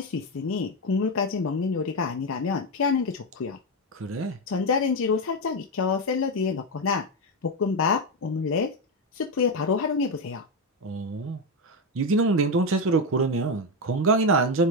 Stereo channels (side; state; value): both; normal; correlation 0.10